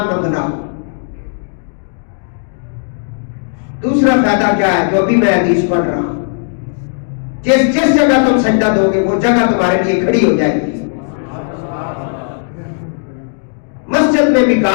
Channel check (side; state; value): right; silent; digital silence